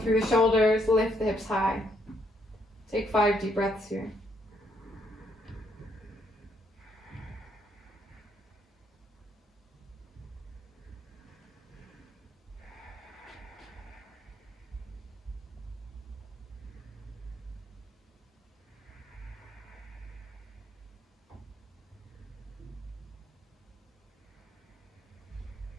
the shoulders. Lift the hips high. Take 5 deep breaths here.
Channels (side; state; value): both; normal; correlation 0.72